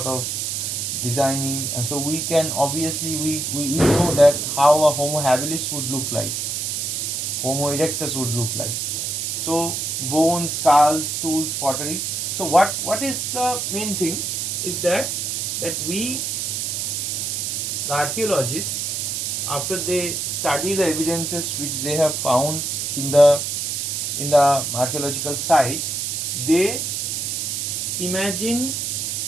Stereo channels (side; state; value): right; noise; hiss, 1 dB below the sound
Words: of designing, and so we can obviously we know that how a Homo habilis would look like, Homo erectus would look like. So bones, skulls, tools, pottery. So what is the main thing is that we, the archaeologists, after they study the evidences which they have found in the archaeological sites, they imagine